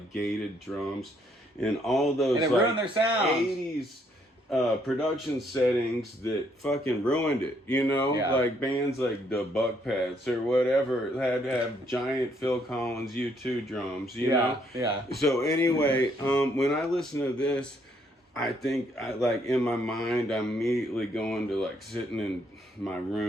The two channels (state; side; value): normal; both; correlation 0.70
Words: gated drums and all those And it like ruined their sound. 80s production settings that fucking ruined it, you know? Yeah. Like bands like the Buckpats or whatever had to have giant Phil Collins U2 drums, you know? Yeah. So anyway, when I listen to this, I think I like in my mind I'm immediately going to like sitting in my